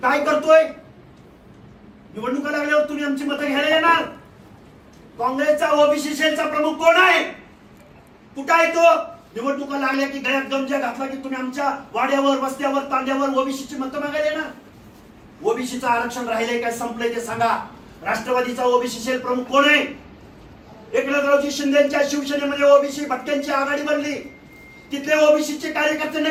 काय करतोय? निवडणुका लागल्यावर तुम्ही आमची मतं घ्यायला येणार? काँग्रेसचा ओबीसी सेलचा प्रमुख कोण आहे? कुठं आहे तो? निवडणुका लागल्या की गळ्यात गमजा घातला की तुम्ही आमच्या वाड्यावर, वस्त्यावर, तांड्यावर ओबीसीची मतं मागायला येणार? ओबीसीचं आरक्षण राहिलंय काय, संपलंय ते सांगा. राष्ट्रवादीचा ओबीसी सेल प्रमुख कोण आहे? एकनाथरावजी शिंदेच्या शिवसेनेमध्ये ओबीसी भटक्यांची आघाडी बनली. तिथले ओबीसीचे कार्यकर्ते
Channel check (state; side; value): identical; both; correlation 1.00